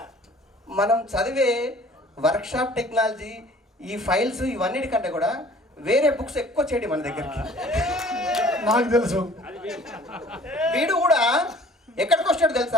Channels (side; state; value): both; normal; correlation 0.52